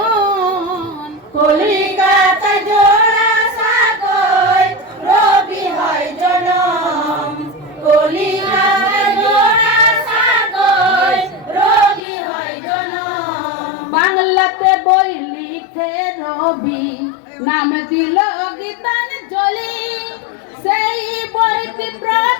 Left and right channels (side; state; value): right; drops out; at 12.0 s